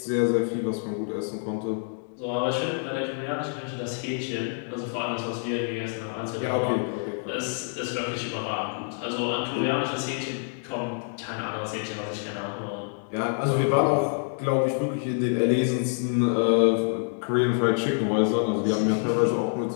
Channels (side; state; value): right; silent; 60 dB below the other